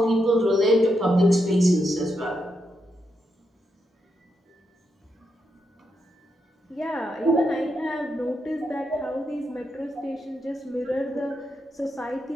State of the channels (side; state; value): both; normal; correlation 0.82